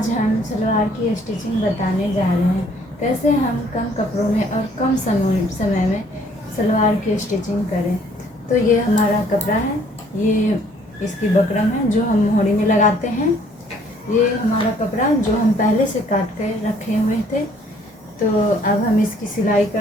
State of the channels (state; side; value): normal; both; correlation 0.61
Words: हम सलवार की स्टिचिंग बताने जा रहे हैं, कैसे हम कम कपड़ों में और कम समय में सलवार की स्टिचिंग करें। तो ये हमारा कपड़ा है, ये इसकी बकरम है जो हम मोहरी में लगाते हैं। ये हमारा कपड़ा जो हम पहले से काट कर रखे हुए थे। तो अब हम इसकी सिलाई